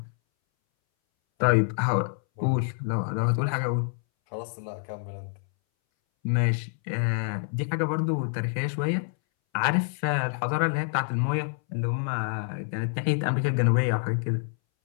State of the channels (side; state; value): right; silent; 60 dB below the other